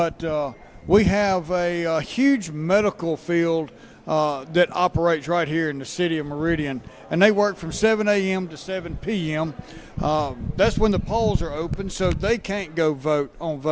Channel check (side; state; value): both; identical; correlation 1.00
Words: we have a huge medical field that operates right here in the city of Merdian, and they work from 7 a.m. to 7 p.m. That's when the polls are open, so they can't go vote on